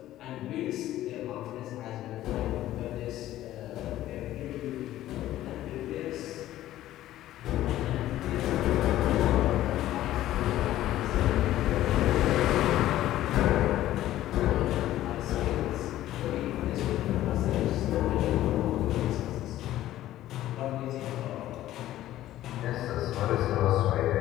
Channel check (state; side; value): quieter; right; 14.0 dB